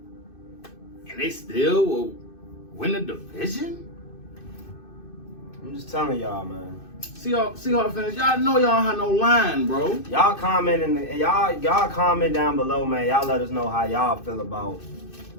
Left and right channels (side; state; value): right; late; 2.6 ms